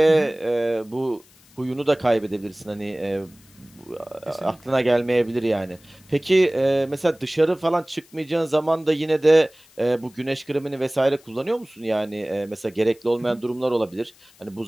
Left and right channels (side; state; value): left; noise; hiss, 28 dB below the sound